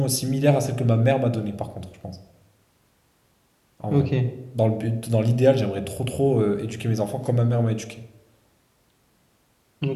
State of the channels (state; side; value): identical; both; correlation 1.00